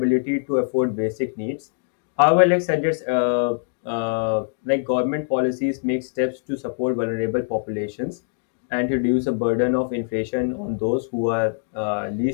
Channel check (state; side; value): silent; right; digital silence